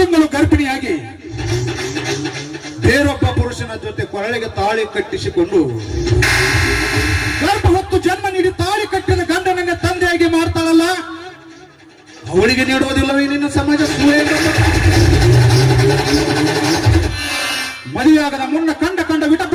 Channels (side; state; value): both; identical; correlation 1.00